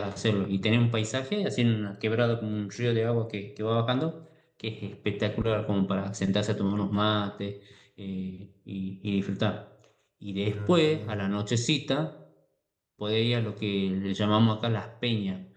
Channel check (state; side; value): identical; both; correlation 1.00